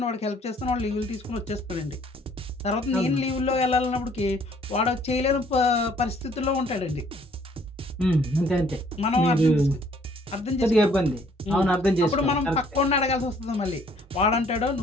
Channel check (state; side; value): normal; both; correlation 0.61